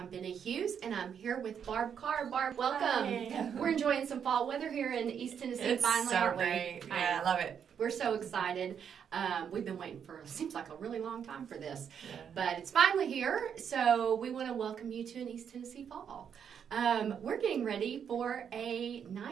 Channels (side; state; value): left; quieter; 7.8 dB